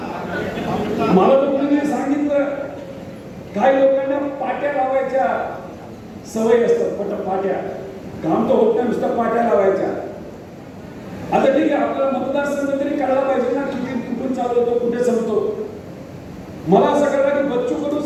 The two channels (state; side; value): identical; both; correlation 1.00